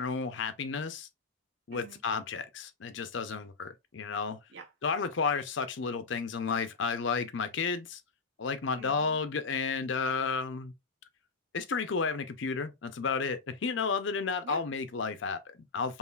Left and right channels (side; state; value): right; quieter; 4.6 dB